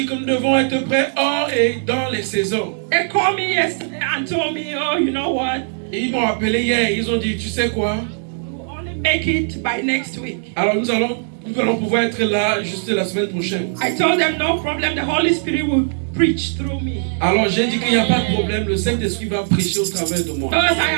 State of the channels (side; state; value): left; silent; digital silence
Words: que nous devons être prêts hors et dans les saisons. They called me yesterday and told me, oh, you know what? Et ils m'ont appelé hier, ils ont dit, tu sais quoi? We'll only make it by next week. Alors nous allons pouvoir être là juste la semaine prochaine. I told them no problem, the Holy Spirit will preach through me. Alors j'ai dit qu'il n'y a pas de problème, le Saint-Esprit va prêcher au travers de moi. Because I